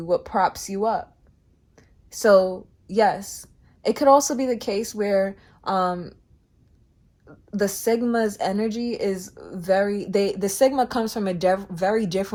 what props you up. So yes, it could also be the case where the Sigma's energy is the Sigma comes from a very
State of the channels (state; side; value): identical; both; correlation 1.00